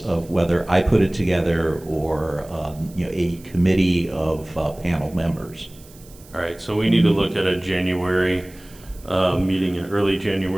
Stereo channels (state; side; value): noise; right; hiss, 24 dB below the sound